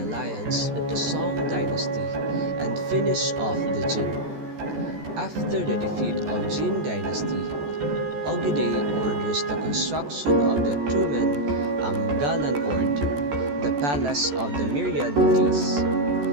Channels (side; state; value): left; late; 14 ms